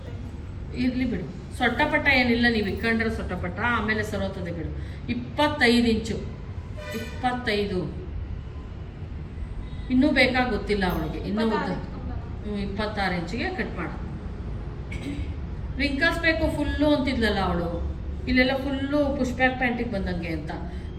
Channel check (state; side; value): identical; both; correlation 1.00